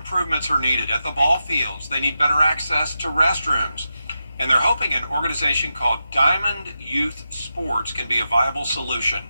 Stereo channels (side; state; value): both; inverted; correlation -0.88